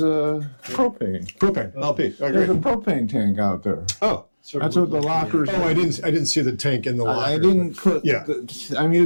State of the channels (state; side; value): inverted; both; correlation -1.00